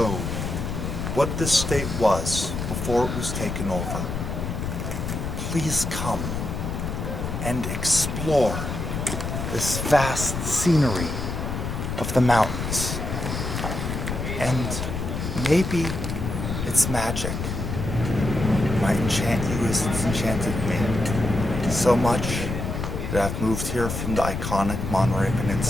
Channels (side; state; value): left; noise; rumble, 4 dB below the sound